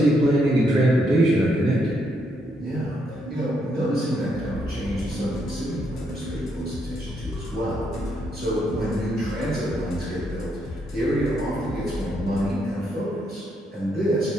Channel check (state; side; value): normal; both; correlation 0.76